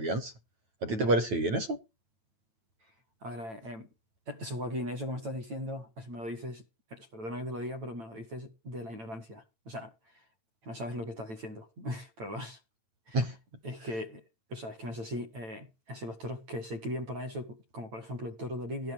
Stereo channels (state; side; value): late; left; 8.9 ms